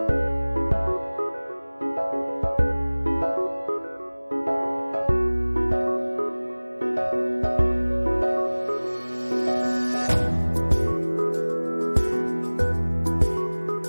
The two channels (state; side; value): inverted; both; correlation -1.00